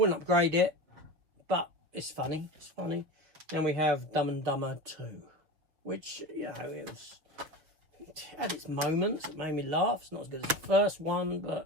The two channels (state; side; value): late; left; 6.6 ms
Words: upgrade it, but it's funny. It's funny. Then we have Dumb and Dumber 2, which, you know, it had its moments. It made me laugh. It's not as good as the first one,